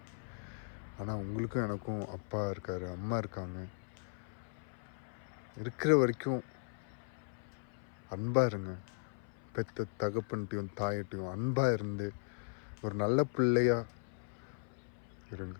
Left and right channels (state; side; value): silent; right; 53 dB below the other